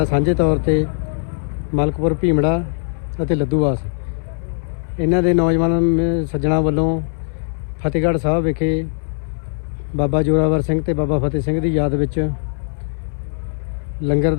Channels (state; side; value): silent; right; 63 dB below the other